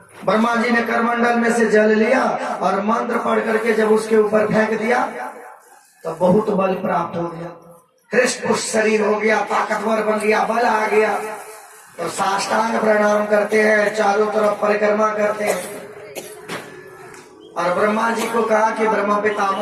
ब्रह्मा जी ने करमंडल में से जल लिया और मंत्र पढ़ करके जब उसके ऊपर फेंक दिया तो बहुत बल प्राप्त हो गया, हृष्ट पुष्ट शरीर हो गया, ताकतवर बन गया, बल आ गया। तो साष्टांग प्रणाम करते हैं, चारों तरफ परिक्रमा करते हैं। और ब्रह्मा जी को कहा कि ब्रह्मा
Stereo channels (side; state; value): both; identical; correlation 1.00